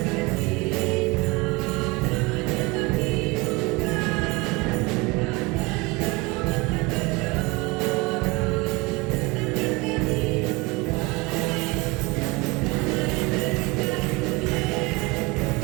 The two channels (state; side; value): quieter; left; 24.5 dB